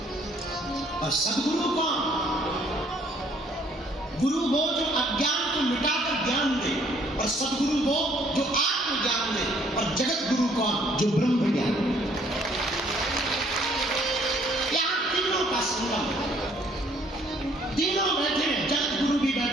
और सदगुरु कौन? गुरु वो जो अज्ञान को मिटाकर ज्ञान दे, और सदगुरु वो जो आत्मज्ञान दे, और जगत गुरु कौन? जो ब्रह्म ज्ञान दे। यहाँ तीनों का संगम, तीनों बैठे हैं, जगत गुरु भी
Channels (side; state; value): both; normal; correlation 0.63